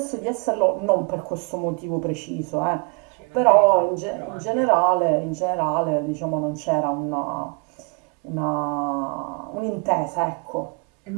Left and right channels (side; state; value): left; quieter; 34.8 dB